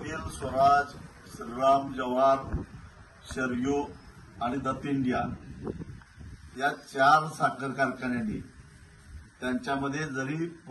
स्वराज, श्रीराम, जवार, शरयू आणि दत्त इंडिया या 4 साखर कारखान्यांनी त्यांच्यामध्ये जरी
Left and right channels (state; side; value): identical; both; correlation 1.00